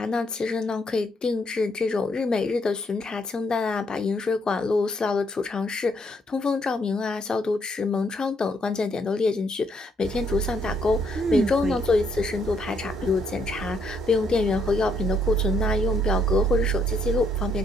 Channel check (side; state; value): both; normal; correlation 0.71